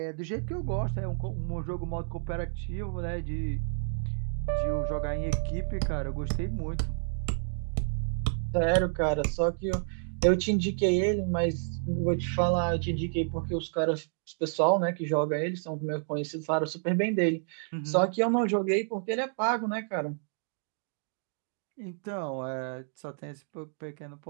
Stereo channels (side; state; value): left; silent; digital silence